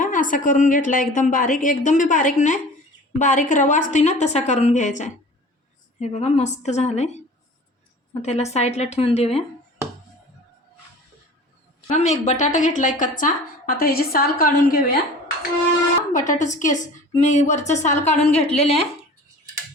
असा करून घेतला एकदम बारीक, एकदम भी बारीक नाही, बारीक रवा असते ना तसा करून घ्यायचा आहे। हे बघा मस्त झालंय। मग त्याला साईडला ठेवून देऊया। मी एक बटाटा घेतलाय कच्चा, आता ह्याची साल काढून घेऊया। बटाट्याचे केस मी वरचं साल काढून घेतलेले आहे।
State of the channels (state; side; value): normal; both; correlation 0.42